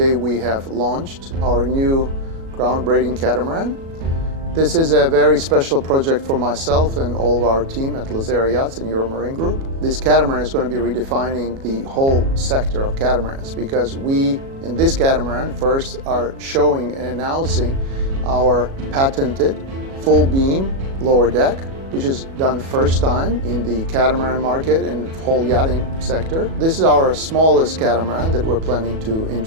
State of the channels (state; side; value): late; left; 37 ms